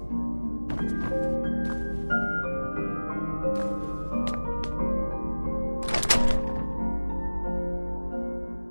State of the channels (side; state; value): both; inverted; correlation -1.00